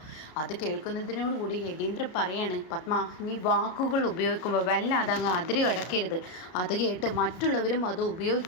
അത് കേൾക്കുന്നതിനോടുകൂടി യതീന്ദ്രൻ പറയാണ്, പത്മ നീ വാക്കുകൾ ഉപയോഗിക്കുമ്പോൾ വല്ലാതെ അങ്ങ് അതിര് കടക്കരുത്. അത് കേട്ട് മറ്റുള്ളവരും അത്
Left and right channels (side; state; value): right; late; 33 ms